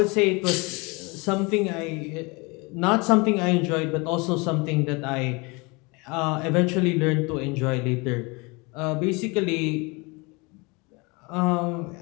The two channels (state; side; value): quieter; right; 27.4 dB